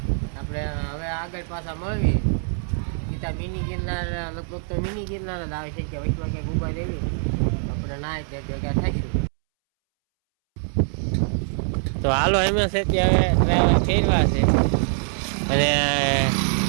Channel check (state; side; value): silent; left; 63 dB below the other